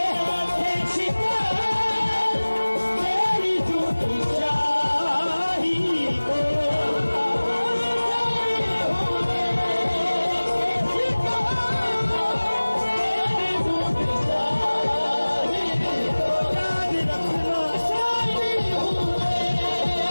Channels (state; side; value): inverted; both; correlation -1.00